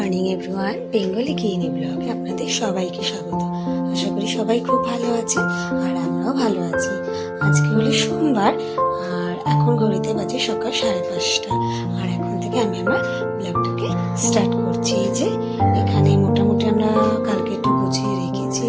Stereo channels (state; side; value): identical; both; correlation 1.00